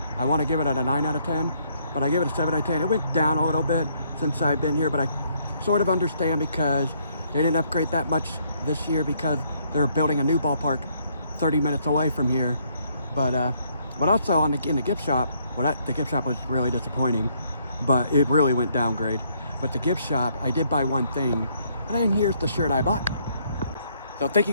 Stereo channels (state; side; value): inverted; both; correlation -0.69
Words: I want to give it a 9 out of 10, but I give it a 7 out of 10. It went down a little bit since I've been here, but I sort of understand because they didn't upgrade that much this year because they're building a new ballpark 30 minutes away from here. But also in the gift shop, the gift shop was really disappointing, but it really went downgrade. But the gift shop, I did buy one thing, and here's the shirt I bought. So thank you